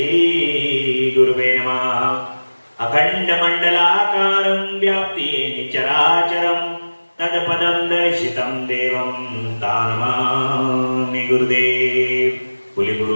गुरुवे नमः। अखंड मंडलाकारं व्याप्ति चराचरं तत्पदं दर्शितं देवं तानमामि गुरुदेव। बोले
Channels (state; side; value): inverted; both; correlation -1.00